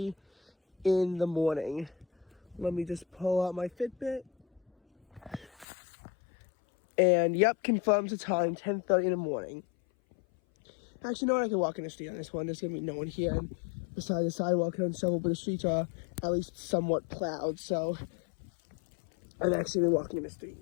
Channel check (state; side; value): drops out; right; at 5.7 s